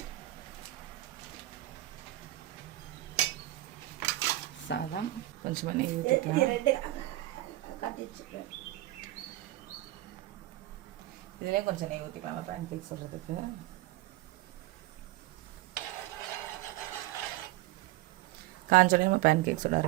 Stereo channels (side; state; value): left; quieter; 16.9 dB